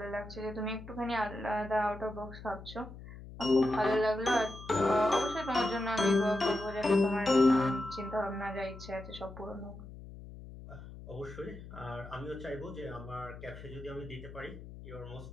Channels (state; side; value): noise; left; hum, 14 dB below the sound